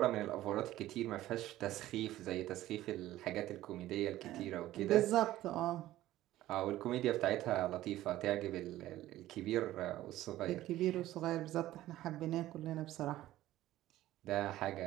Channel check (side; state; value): left; quieter; 14.9 dB